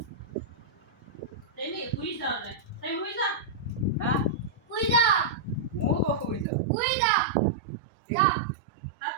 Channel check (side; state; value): left; drops out; at 6.5 s